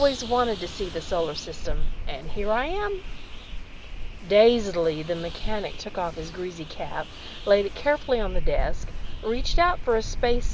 wanted to see the solar system, and here I am." Dazedly, the mechanic took off his greasy cap, laid it carefully on the desk, reached out for a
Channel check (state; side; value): identical; both; correlation 1.00